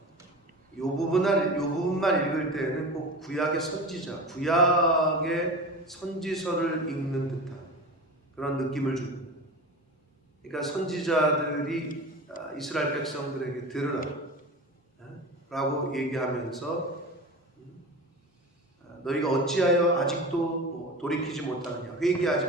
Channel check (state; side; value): normal; both; correlation 0.31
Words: 요 부분만 읽을 때에는 꼭 구약의 선지자, 구약의 선지서를 읽는 듯한 그런 느낌을 줍니다. 그러니까 선지자들이 이스라엘 백성들에게 들으라 라고 얘기하면서 너희가 어찌하여 아직도 돌이키지 못하느냐, 회개하지